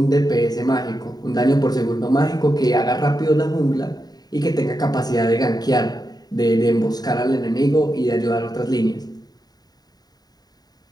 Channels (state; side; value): late; right; 0.19 ms